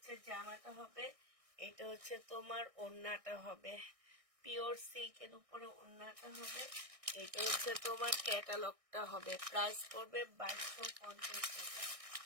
জামাটা হবে, এটা হচ্ছে তোমার ওড়নাটা হবে। পিওর সিল্কের উপরে ওড়নাটা হবে। এটা হচ্ছে তোমার ক্যাটালগটা হবে। প্রাইস পড়বে 2250 টাকা।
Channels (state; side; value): late; left; 1.6 ms